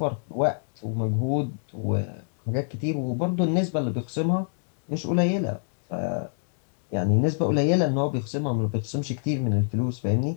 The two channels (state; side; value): silent; right; digital silence